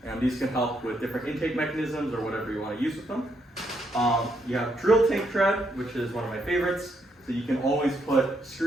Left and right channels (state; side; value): normal; both; correlation 0.76